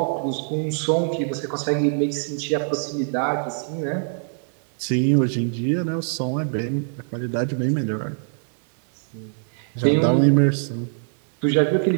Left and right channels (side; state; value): left; silent; 63 dB below the other